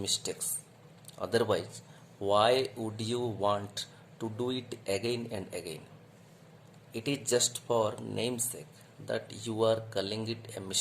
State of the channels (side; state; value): both; identical; correlation 1.00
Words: Otherwise, why would you want to do it again and again? It is just for namesake that you are calling it a